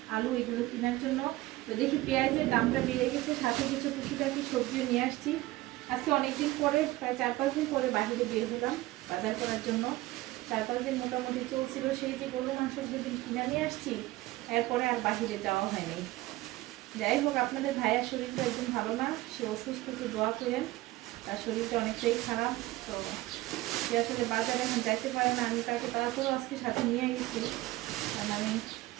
আলু এগুলো কেনার জন্য। তো দেখি পেঁয়াজের দামটা বেড়ে গেছে, সাথে কিছু টুকিটাকি সবজিও নিয়ে আসছি। আজকে অনেকদিন পরে, প্রায় 4-5 দিন পরে বাহিরে বের হলাম বাজার করার জন্য। 4-5 দিন মোটামুটি চলছিল, সেই যে গরু মাংস যেদিন কিনে নিয়ে আসছি, এরপরে আর বাহিরে যাওয়া হয়নি। যাই হোক, আপনাদের ভাইয়ার শরীরটা একদম ভালো না, সে অসুস্থ, একটু দোয়া করেন। তার শরীরটা অনেকটাই খারাপ, তো সে আসলে বাজারে এখন যাইতে পারে না। আমি তাকে তারপরেও আজকে সাথে নিয়ে গেছি, কারণ আমি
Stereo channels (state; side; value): quieter; left; 18.2 dB